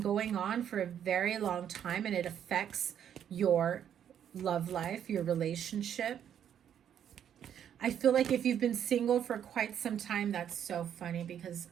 going on for a very long time, and it affects your love life, your relationship. I feel like if you've been single for quite some time, that's so funny, because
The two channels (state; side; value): quieter; left; 9.4 dB